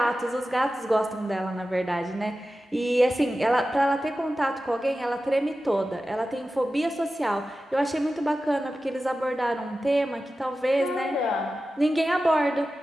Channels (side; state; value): both; normal; correlation 0.94